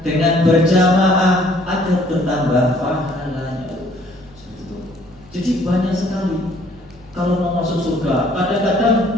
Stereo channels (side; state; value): right; noise; hum, 27 dB below the sound